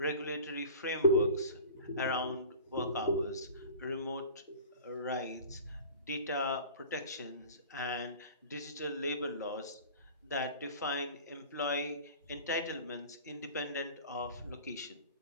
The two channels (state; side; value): inverted; both; correlation -0.40